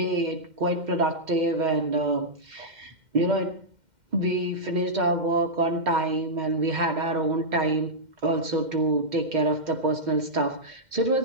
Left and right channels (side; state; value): left; late; 2.1 ms